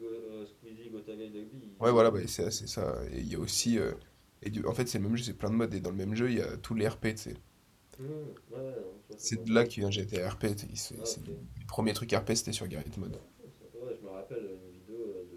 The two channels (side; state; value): both; identical; correlation 1.00